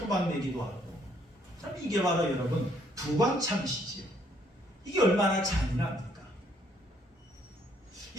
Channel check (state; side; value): normal; both; correlation 0.67